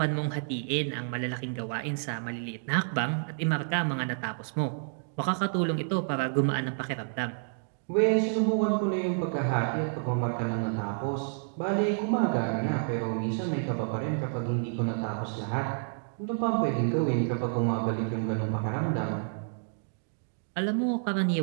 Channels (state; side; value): silent; left; digital silence